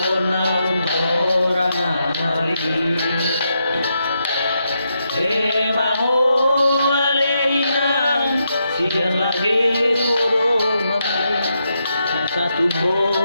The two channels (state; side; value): inverted; both; correlation -0.82